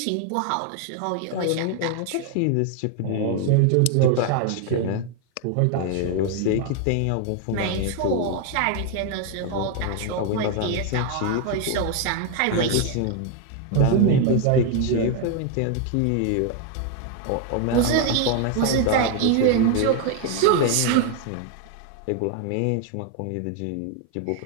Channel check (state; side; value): different; both; correlation 0.01